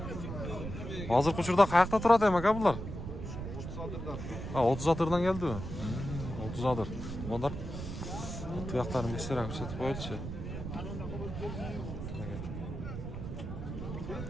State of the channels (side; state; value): right; noise; rumble, 7 dB below the sound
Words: Hozirgi uchurda qayoqda turadi ham aka bular? 30 adırdan. Ha, 30 atırdan geldi mi? 30 adır. Bunlar tuyaklarını göstererek ko'rsatib qo'yilchi.